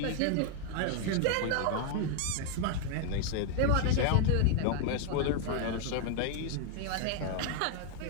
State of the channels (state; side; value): different; both; correlation 0.00